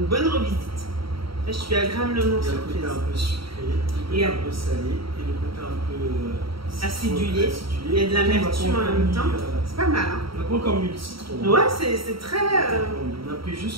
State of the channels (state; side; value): late; left; 0.75 ms